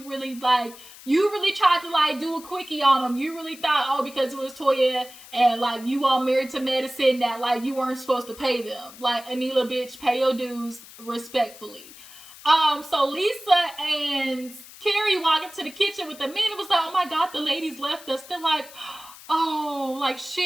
really tried to, like, do a quickie on them. You really thought, oh, because it was Toya and, like, you all married to medicine that, like, you weren't supposed to pay them. Like, Anila, bitch, pay your dues respectfully. So Lisa and Carrie walk into the kitchen with the men. It was like, oh my God, the ladies left us. They're like, oh, like,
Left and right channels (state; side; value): noise; left; hiss, 18 dB below the sound